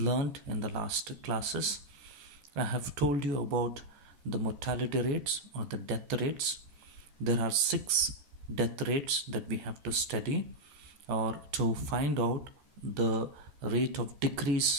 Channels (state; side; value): late; left; 14 ms